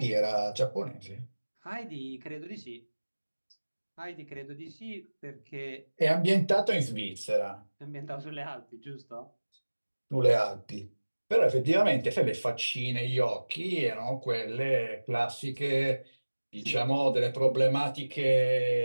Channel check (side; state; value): both; inverted; correlation -1.00